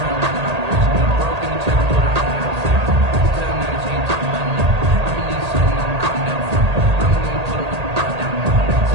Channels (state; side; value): late; left; 1.8 ms